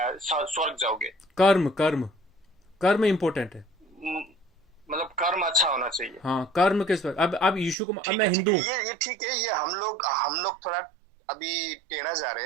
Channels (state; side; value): drops out; left; at 7.8 s